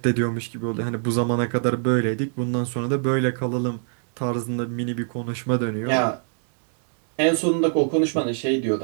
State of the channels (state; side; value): silent; left; digital silence